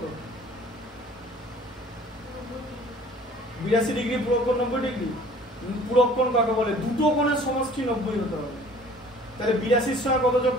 82 ডিগ্রি পূরক কোণ 90 ডিগ্রি। পূরক কোণ কাকে বলে? দুটো কোণের সমষ্টি 90 হতে হবে। তাহলে 82 এর সঙ্গে কত যোগ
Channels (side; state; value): both; normal; correlation 0.50